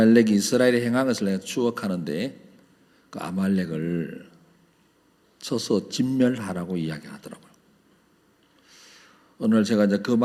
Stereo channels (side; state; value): both; identical; correlation 1.00